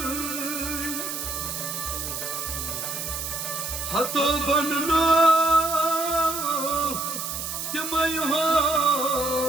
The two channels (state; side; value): noise; right; hiss, 5 dB below the sound